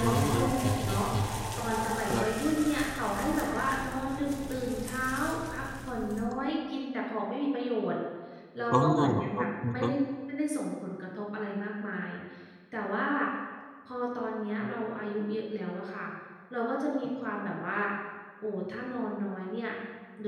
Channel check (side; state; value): both; identical; correlation 1.00